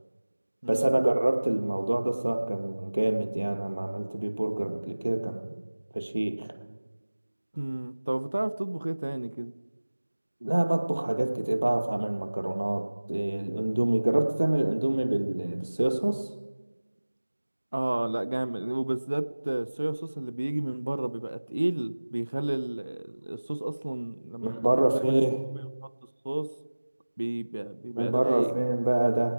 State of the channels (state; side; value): inverted; both; correlation -1.00